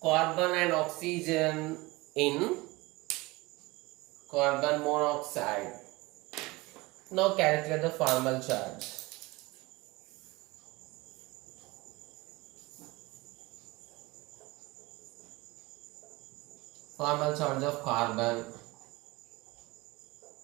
carbon and oxygen in carbon monoxide. Now calculate the formal charge. Formal charge of carbon.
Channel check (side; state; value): left; quieter; 22.4 dB